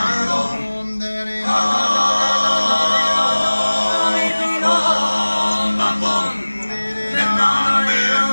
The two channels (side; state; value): both; inverted; correlation -1.00